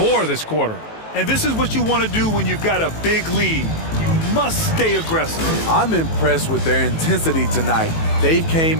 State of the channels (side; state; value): right; late; 18 ms